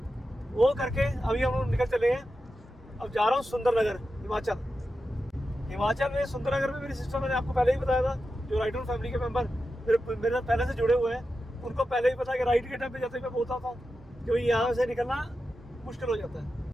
वो करके अभी हम लोग निकल चले हैं। अब जा रहा हूँ सुंदरनगर, हिमाचल में। सुंदरनगर में मेरी सिस्टर, मैंने आपको पहले ही बताया था, जो राइडर फैमिली के मेंबर मेरे पहले से जुड़े हुए हैं, उनको पहले ही पता है कि राइड के टाइम पे जाते मैं बोलता था कि यहाँ से निकलना मुश्किल हो जाता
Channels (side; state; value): both; normal; correlation 0.91